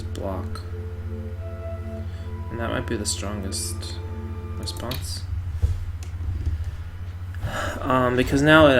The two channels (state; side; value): identical; both; correlation 1.00